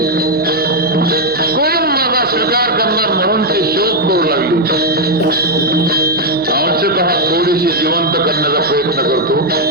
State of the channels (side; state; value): left; noise; hum, 26 dB below the sound